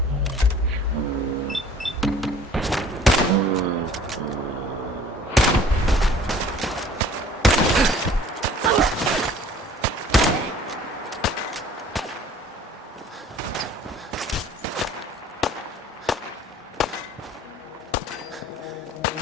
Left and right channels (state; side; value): normal; both; correlation 0.51